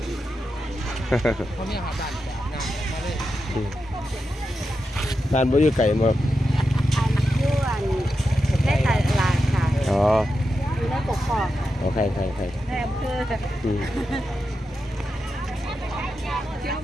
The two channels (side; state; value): both; normal; correlation 0.88